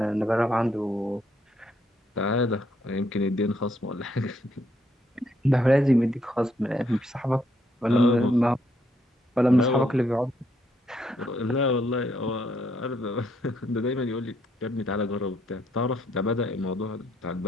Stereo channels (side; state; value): both; normal; correlation 0.73